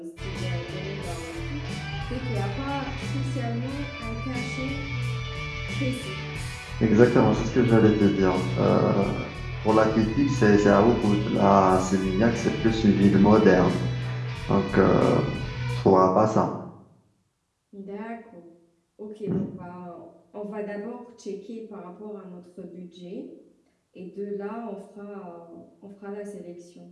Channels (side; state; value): both; identical; correlation 1.00